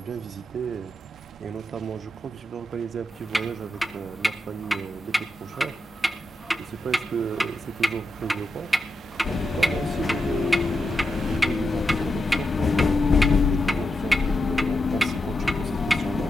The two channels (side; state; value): both; normal; correlation 0.87